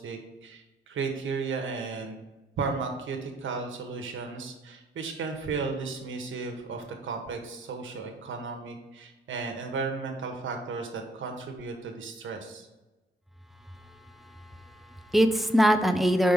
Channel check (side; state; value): both; normal; correlation 0.70